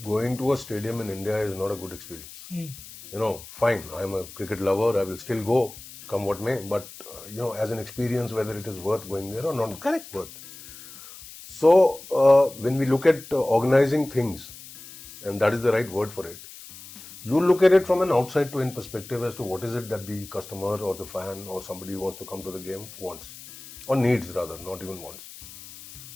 going to a stadium in India is not a good experience. Fine, I'm a cricket lover, I will still go, come what may, but, as an experience, whether it is worth going there or not. Correct. Worth. So, when we look at organizing things, and that is the right word for it, you look at it from an outside to in perspective as to what is it that the customer or the fan or somebody who wants to come to the game wants, or needs rather, not even wants.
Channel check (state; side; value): noise; left; hiss, 16 dB below the sound